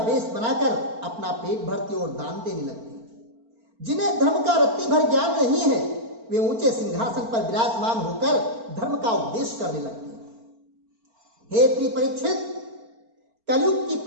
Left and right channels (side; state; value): left; late; 4.4 ms